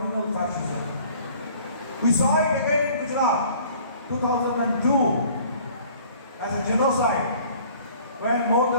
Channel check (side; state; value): both; inverted; correlation -0.52